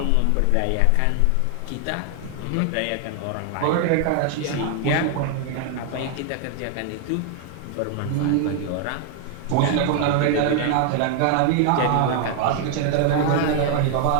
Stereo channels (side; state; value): both; different; correlation 0.00